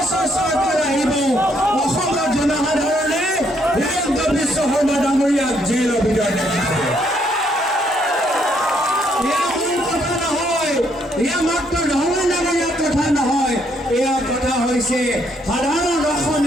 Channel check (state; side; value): normal; both; correlation 0.71